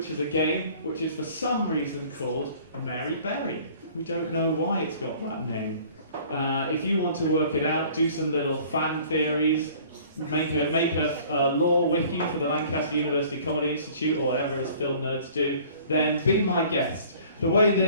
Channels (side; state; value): both; inverted; correlation -0.51